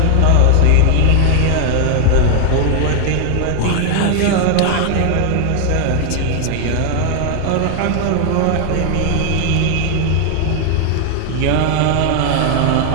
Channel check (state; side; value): different; both; correlation 0.00